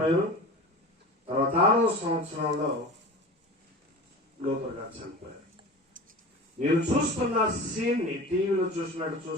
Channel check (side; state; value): both; normal; correlation 0.34